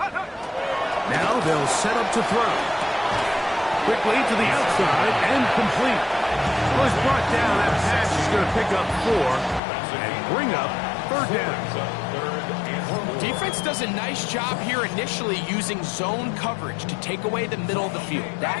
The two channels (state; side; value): drops out; right; at 9.6 s